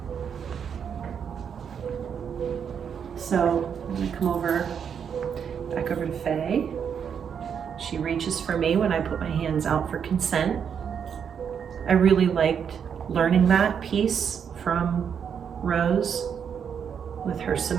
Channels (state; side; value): quieter; left; 7.5 dB